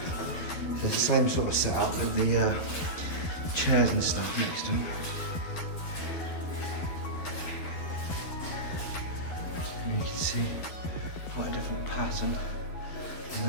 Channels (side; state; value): right; late; 12 ms